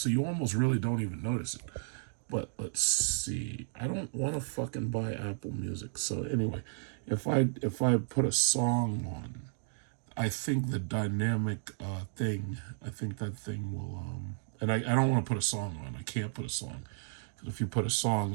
you almost really don't even notice it. But let's see. I don't want to fucking buy Apple Music. So anyway, if I put a song on, I think the dynamic thing, I think that thing will, and I don't want to put a song on. I can't put a song. Because if you put a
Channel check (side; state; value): left; silent; digital silence